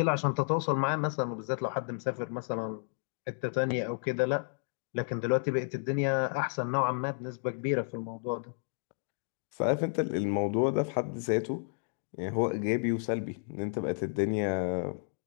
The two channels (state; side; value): silent; right; digital silence